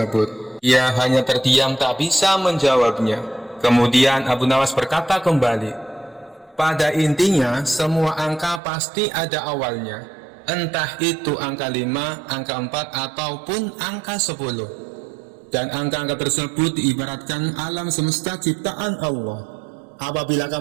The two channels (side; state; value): left; drops out; at 8.6 s